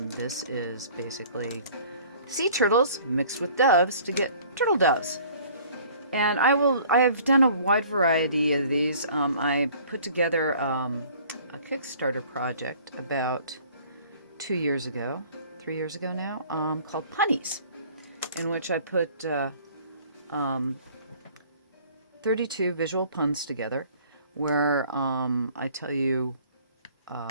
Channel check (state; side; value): inverted; both; correlation -0.52